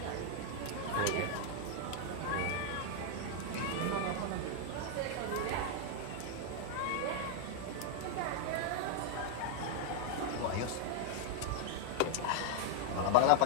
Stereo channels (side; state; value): both; different; correlation 0.00